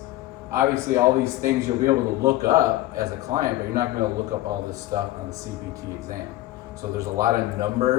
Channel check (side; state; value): right; quieter; 16.0 dB